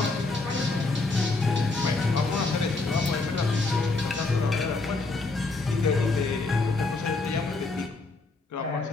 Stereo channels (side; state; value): right; quieter; 3.5 dB